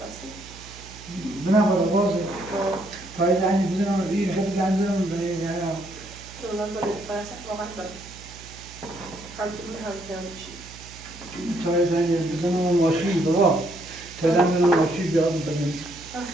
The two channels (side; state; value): right; noise; hum, 18 dB below the sound